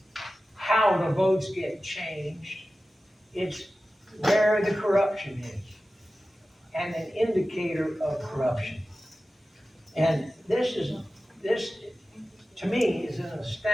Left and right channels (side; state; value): both; normal; correlation 0.95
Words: how the votes get changed. It's where the corruption is, and an indicator of corruption. And this, to me, is an